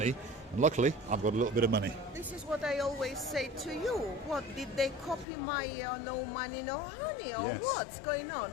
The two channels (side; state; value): right; drops out; at 5.2 s